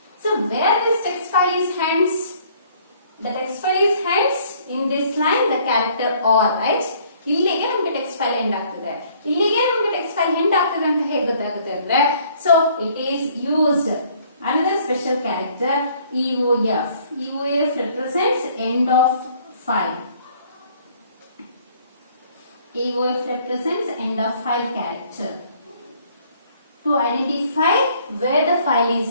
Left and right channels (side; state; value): both; inverted; correlation -0.60